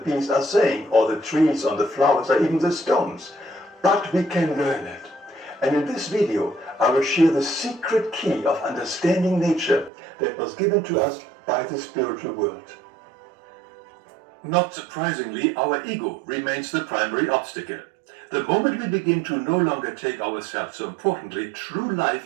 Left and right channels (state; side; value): drops out; left; at 9.9 s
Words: are saying, or the trees, or the flowers, or even the stones. But we can learn it. And in this video, I will share the secret key of understanding nature that was given to us by the spiritual world. Not surprisingly, our ego remains the primary obstacle. The moment we begin to no longer take ourselves so importantly, true